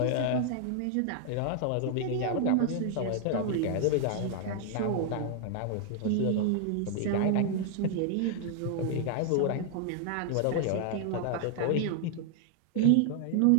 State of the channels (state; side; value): different; both; correlation 0.00